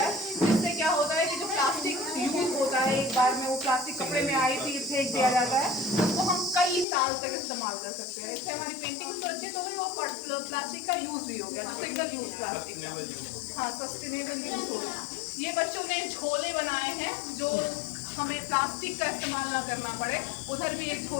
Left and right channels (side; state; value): right; drops out; at 6.9 s